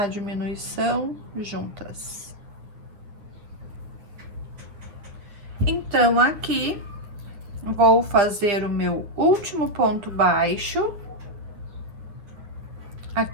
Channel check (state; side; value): late; left; 9.5 ms